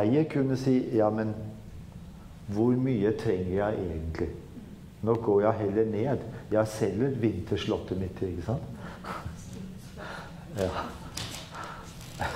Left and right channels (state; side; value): identical; both; correlation 1.00